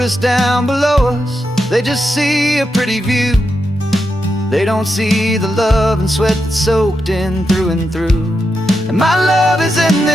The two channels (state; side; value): normal; both; correlation 0.86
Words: down below us, they just see a pretty view. They don't see the love and sweat that's soaked in through and through. And my love is in